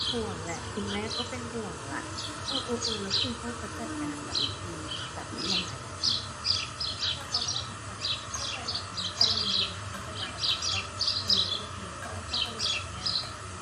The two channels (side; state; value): both; identical; correlation 1.00